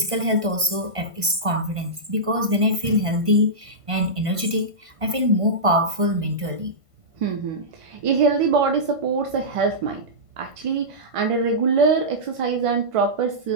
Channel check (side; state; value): left; late; 1.5 ms